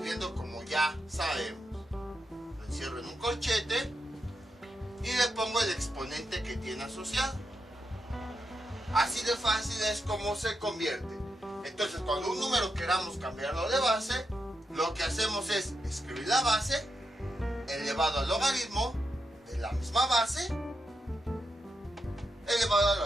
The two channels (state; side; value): normal; both; correlation 0.85